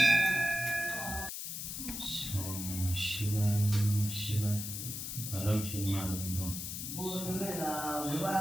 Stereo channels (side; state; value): left; noise; hiss, 6 dB below the sound